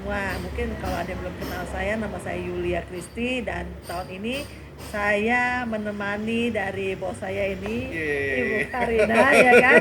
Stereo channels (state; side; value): identical; both; correlation 1.00